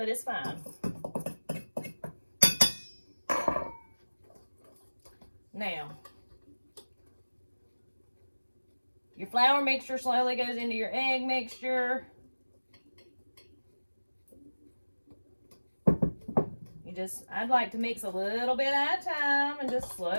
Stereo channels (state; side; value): inverted; both; correlation -1.00